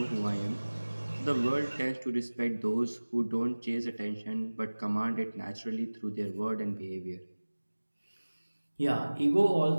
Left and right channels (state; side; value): inverted; both; correlation -1.00